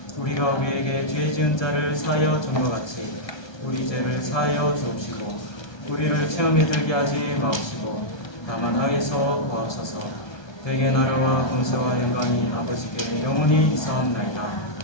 우리가 우리에게 죄 지은 자를 사하여 준 것 같이 우리 죄를 사하여 주옵시고 우리를 체험에 들게 하지 마옵시고 다만 악에서 구하옵소서. 대개 나라와 권세와 영광이 아버지께 영원히 있사옵나이다.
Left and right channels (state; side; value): late; right; 1.2 ms